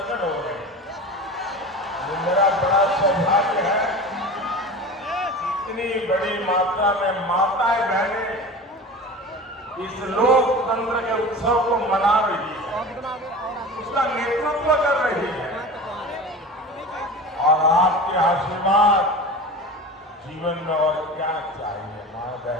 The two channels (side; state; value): both; normal; correlation 0.33